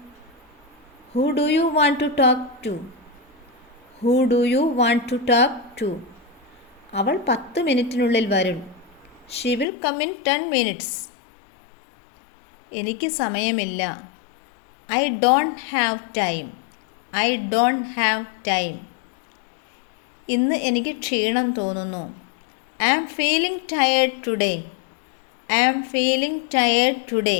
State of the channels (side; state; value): right; drops out; at 9.7 s